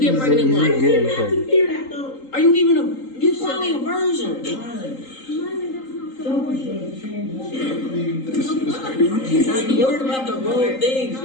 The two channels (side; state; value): right; late; 3.8 ms